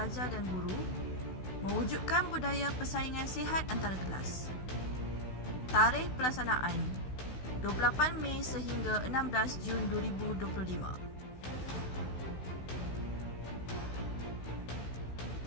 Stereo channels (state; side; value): late; right; 16 ms